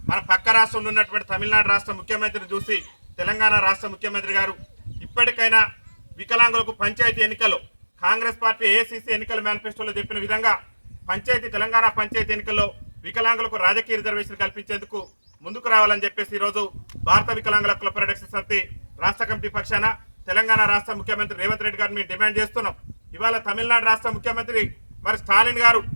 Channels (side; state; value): both; inverted; correlation -1.00